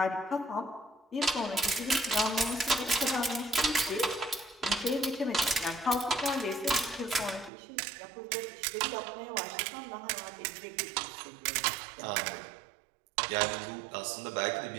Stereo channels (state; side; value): drops out; left; at 7.5 s